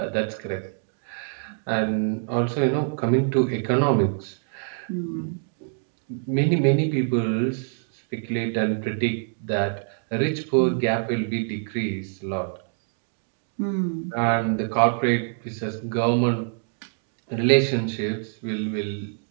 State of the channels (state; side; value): silent; left; 61 dB below the other